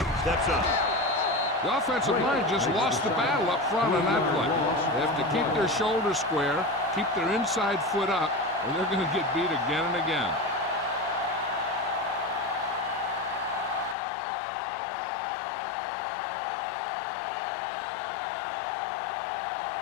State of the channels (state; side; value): drops out; right; at 14.0 s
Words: Steps up. The offensive line just lost the battle up front on that play. They have to keep their shoulders square, keep their inside foot up, or they're going to get beat again and again.